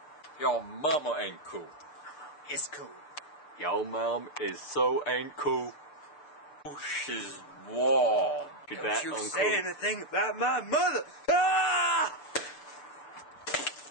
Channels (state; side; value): late; right; 6.8 ms